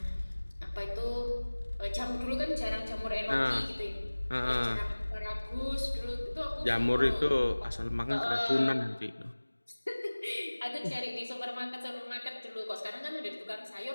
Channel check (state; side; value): inverted; both; correlation -1.00